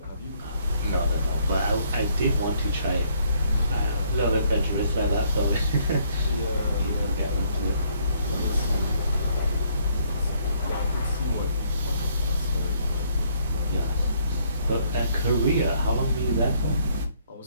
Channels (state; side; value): inverted; both; correlation -0.67